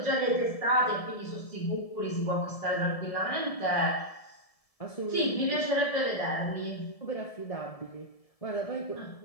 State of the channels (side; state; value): right; late; 1.7 ms